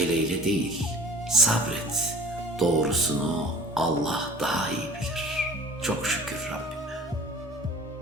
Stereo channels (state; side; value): normal; both; correlation 0.44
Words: değil, sabret. Doğrusunu Allah daha iyi bilir. Çok şükür Rabbime.